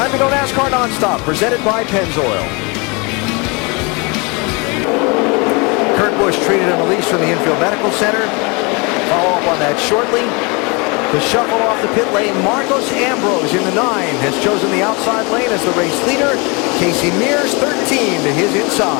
to go NASCAR Nonstop, presented by Pennzoil. Kurt Busch Busch treated and released from the infield medical center. Follow up on that shortly. The shuffle off the pit lane. Marcos Ambrose in the 9 has chosen the outside lane as the race leader. Kasey Mears 13 to his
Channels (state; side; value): quieter; right; 29.3 dB